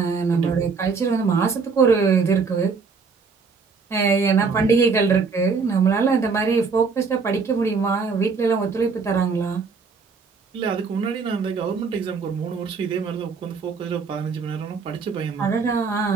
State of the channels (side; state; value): left; quieter; 5.0 dB